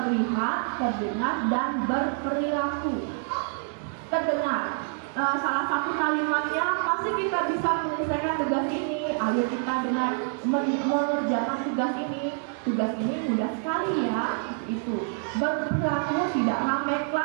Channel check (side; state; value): left; silent; 55 dB below the other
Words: terdengar, dan berperilaku. Terdengar, salah satu kalimatnya pasti kita bisa menyelesaikan tugas ini. Ayo kita dengar mengerjakan tugas ini. Tugas ini mudah sekali ya. Itu berperilaku tidak ramai,